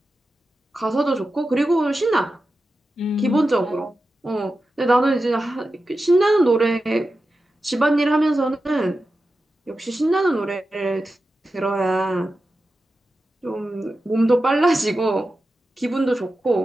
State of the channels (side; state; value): both; normal; correlation 0.92